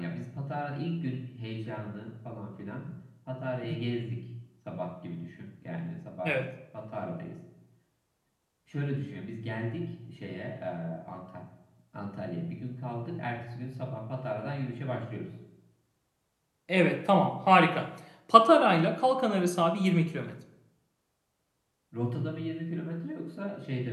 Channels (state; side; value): identical; both; correlation 1.00